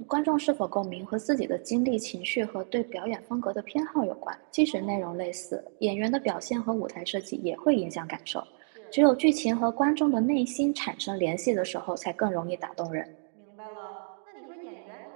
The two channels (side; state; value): left; silent; 58 dB below the other